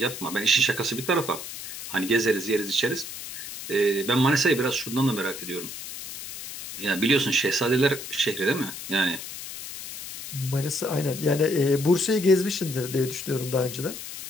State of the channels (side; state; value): left; noise; hiss, 10 dB below the sound